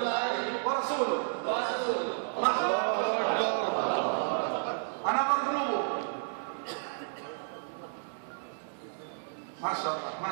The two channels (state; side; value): silent; left; digital silence